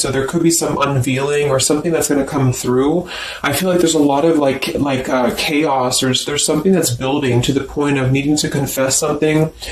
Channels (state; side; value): identical; both; correlation 1.00